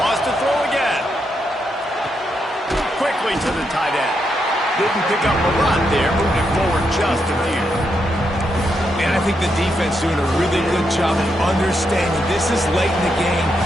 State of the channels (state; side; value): normal; both; correlation 0.81